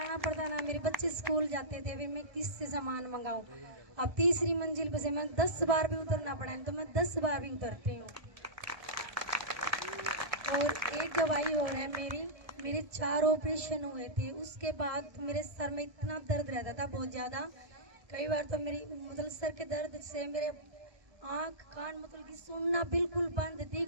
पड़ता ना, मेरे बच्चे स्कूल जाते थे, फिर मैं किससे सामान मंगाऊँ। अब 3री मंजिल पे से मैं 10 बार भी उतरना पड़ा है तो मैं 10 बार भी उतरती हूँ। और एक गवाही हो रहा है मेरे 4 ऑपरेशन हुए थे। उसके बाद मेरे सर में इतना दर्द रहता था बहुत ज़्यादा। कई बार तो मेरी मतलब सर के दर्द से मेरे आँख कान मतलब कि सुनना बिल्कुल बंद,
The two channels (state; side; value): late; left; 1.7 ms